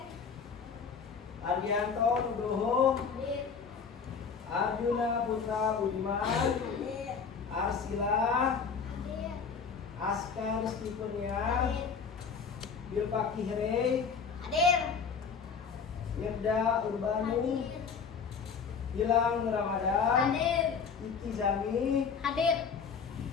Ardianto Nugroho, Hadir. Arjuna Putra Budiman, Hadir. Arsila, Hadir. Askar Stepenia, Hadir. Bilpa Kihre, Hadir. Yerda Urbanu, Gilang Ramadan, Hadir. Iki Zami, Hadir.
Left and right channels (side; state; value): right; quieter; 5.9 dB